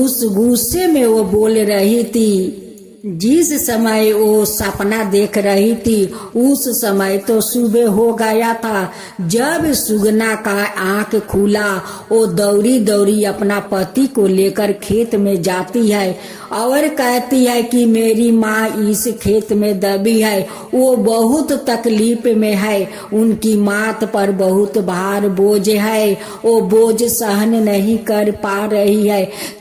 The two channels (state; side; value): identical; both; correlation 1.00